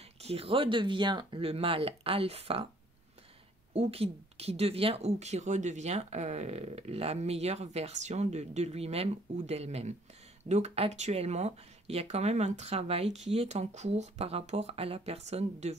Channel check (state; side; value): normal; both; correlation 0.60